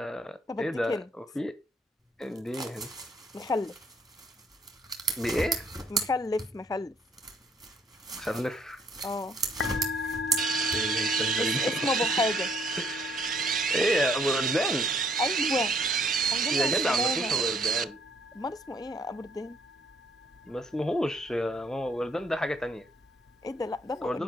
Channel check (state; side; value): normal; both; correlation 0.65